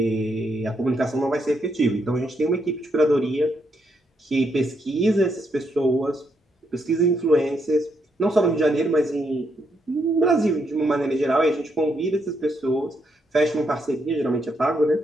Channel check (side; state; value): both; normal; correlation 0.78